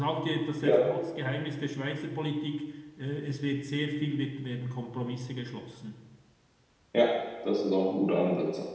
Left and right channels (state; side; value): identical; both; correlation 1.00